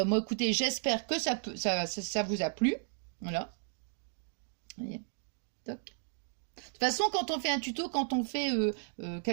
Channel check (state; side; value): silent; left; digital silence